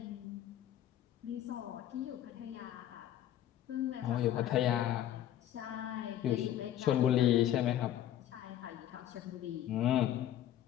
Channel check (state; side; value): quieter; right; 11.8 dB